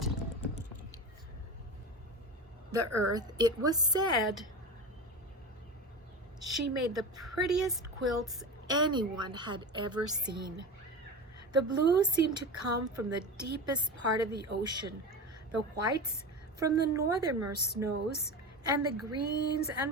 the earth, it was said she made the prettiest quilts anyone had ever seen. The blue seemed to come from the deepest part of the ocean, the whites from the northernmost snows, and the greens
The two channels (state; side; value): normal; both; correlation 0.26